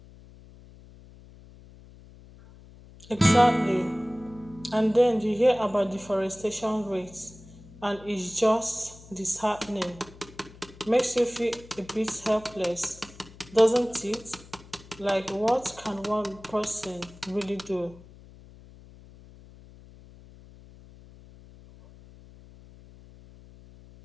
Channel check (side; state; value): left; noise; hum, 21 dB below the sound